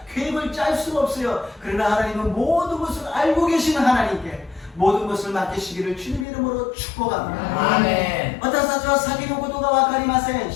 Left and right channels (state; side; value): drops out; right; at 6.2 s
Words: 계획을 짤 수가 없어요. 그러나 하나님은 모든 것을 알고 계시는 하나님께 모든 것을 맡기시기를 주님의 이름으로 축복합니다. 아멘. 私たちは先のことが分かりません。